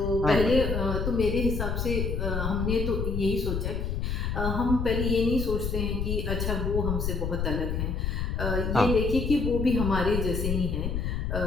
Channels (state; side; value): noise; left; rumble, 1 dB below the sound